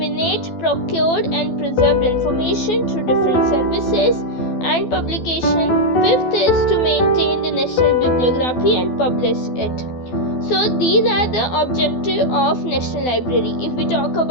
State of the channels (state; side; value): late; right; 12 ms